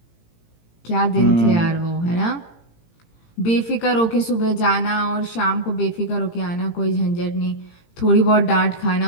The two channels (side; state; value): right; late; 18 ms